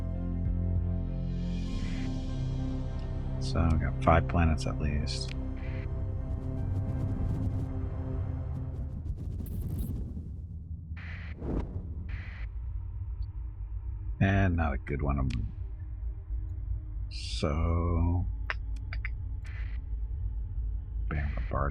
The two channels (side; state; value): both; identical; correlation 1.00